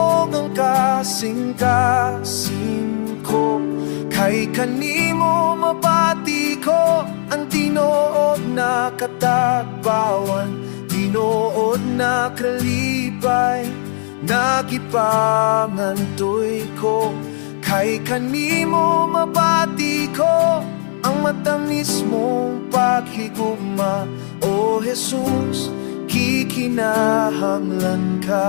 ang kasing-kasing ko. Kay kanimo mapati ko ang tinuod na katagbawan, tinuod na kalipay, nagipangantoy ko. Kay kanimo mapati ko ang matamis mong paghigugma, O Jesus, kikinahanglan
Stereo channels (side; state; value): right; silent; 59 dB below the other